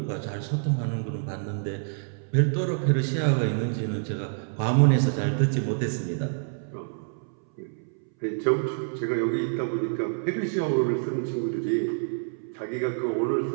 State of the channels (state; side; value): silent; left; 60 dB below the other